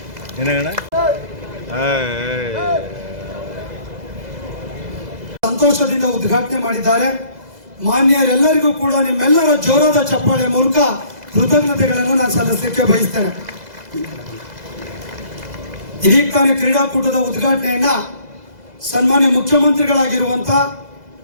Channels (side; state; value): left; late; 2.0 ms